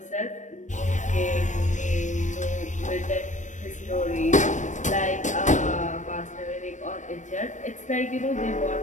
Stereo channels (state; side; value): late; right; 0.35 ms